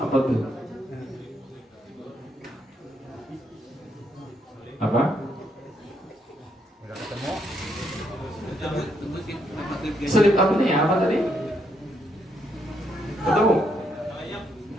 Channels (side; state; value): both; normal; correlation 0.76